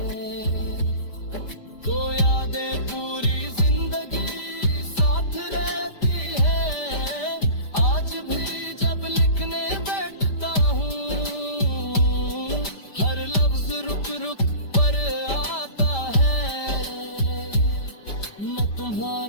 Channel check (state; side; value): late; right; 5.0 ms